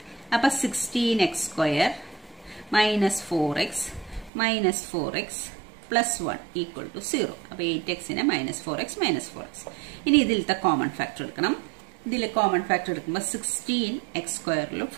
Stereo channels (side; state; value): left; drops out; at 4.3 s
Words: അപ്പൊ 16x² -4x plus 1 equal to 0. അപ്പൊ 8xനെ -4x -4x. ഇനി ഇതിലത്തെ കോമൺ ഫാക്ടർ എടുക്കണം. ഇതിൽ കോമൺ ഫാക്ടർ എടുക്കുമ്പോൾ 16x²